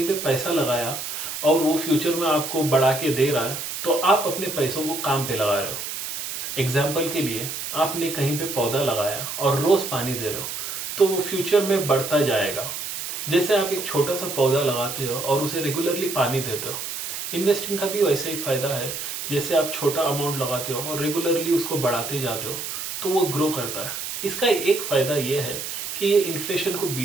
पे पैसा लगाया और वो फ्यूचर में आपको बढ़ा के दे रहा है, तो आप अपने पैसों को काम पे लगा रहे हो। एग्जाम्पल के लिए, आपने कहीं पे पौधा लगाया और रोज पानी दे रहे हो, तो वो फ्यूचर में बढ़ता जाएगा। जैसे आप एक छोटा सा पौधा लगाते हो और उसे रेगुलरली पानी देते हो, इन्वेस्टिंग का भी वैसे ही फायदा है। जैसे आप छोटा अमाउंट लगाते हो और रेगुलरली उसको बढ़ाते जाते हो तो वो ग्रो करता है। इसका एक फायदा ये है कि ये इन्फ्लेशन को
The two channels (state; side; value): noise; right; hiss, 6 dB below the sound